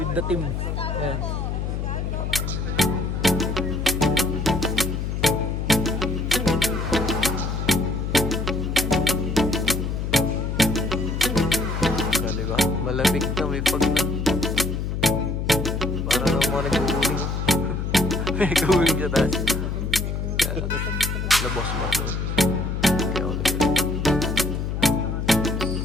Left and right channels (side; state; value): left; noise; hum, 2 dB below the sound